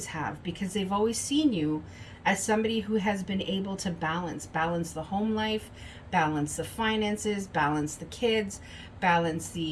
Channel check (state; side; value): identical; both; correlation 1.00